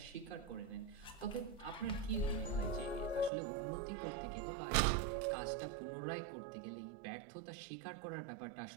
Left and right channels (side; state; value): left; drops out; at 3.3 s